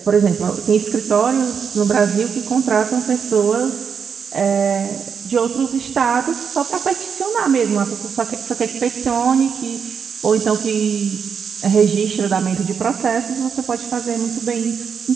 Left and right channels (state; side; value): quieter; left; 6.6 dB